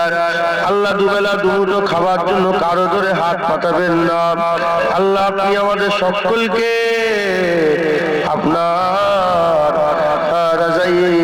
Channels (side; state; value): both; identical; correlation 1.00